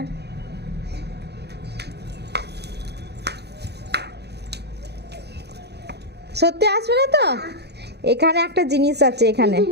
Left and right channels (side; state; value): left; late; 0.48 ms